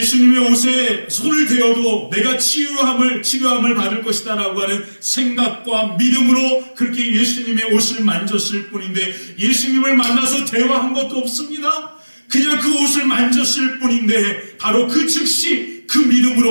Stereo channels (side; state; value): both; inverted; correlation -1.00